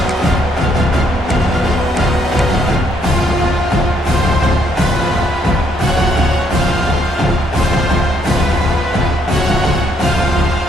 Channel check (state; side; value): normal; both; correlation 0.71